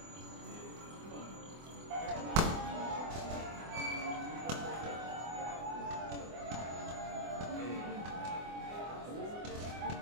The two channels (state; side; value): late; left; 24 ms